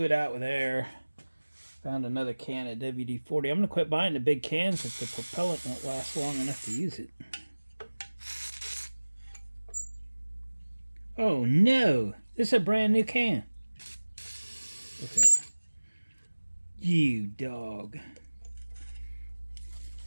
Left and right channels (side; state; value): both; inverted; correlation -1.00